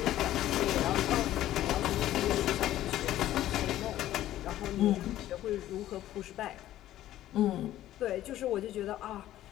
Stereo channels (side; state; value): right; quieter; 13.5 dB